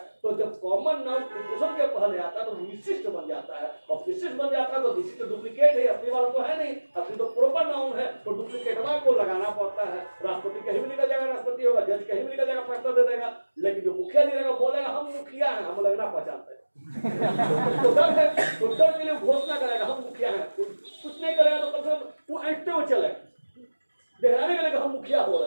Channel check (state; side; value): inverted; both; correlation -1.00